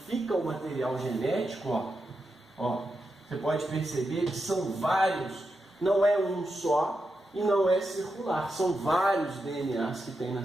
o material genético, ó, você pode perceber que são vários, não é um só e não é circular, são vários DNAs que tem na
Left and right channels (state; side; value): normal; both; correlation 0.87